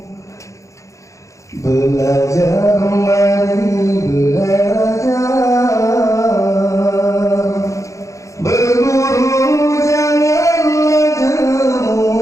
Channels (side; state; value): right; late; 0.15 ms